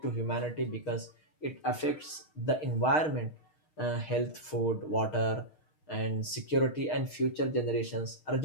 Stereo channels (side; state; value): right; late; 6.4 ms